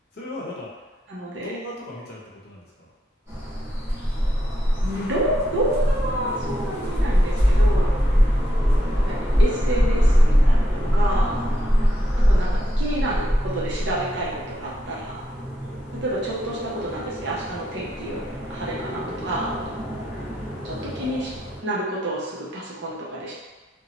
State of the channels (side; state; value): both; normal; correlation 0.80